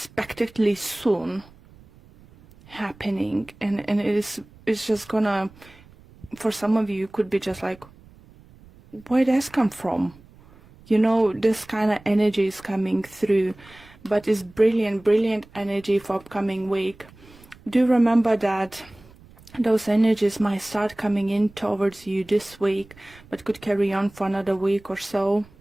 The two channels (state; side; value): noise; right; rumble, 25 dB below the sound